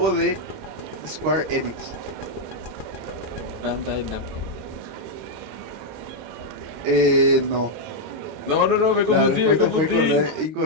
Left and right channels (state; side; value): late; left; 26 ms